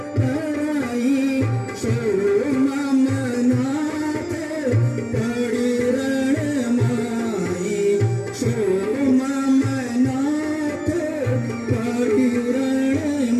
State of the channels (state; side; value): identical; both; correlation 1.00